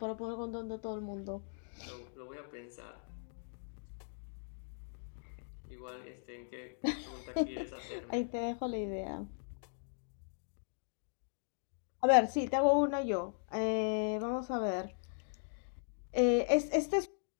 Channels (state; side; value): silent; right; digital silence